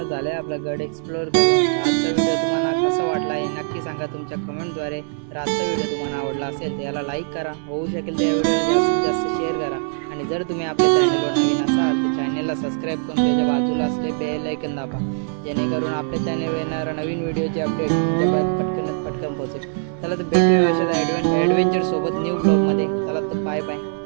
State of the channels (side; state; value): left; silent; 64 dB below the other